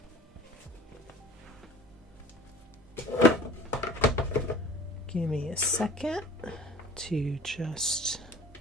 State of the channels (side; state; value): both; normal; correlation 0.46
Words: Give me a second to just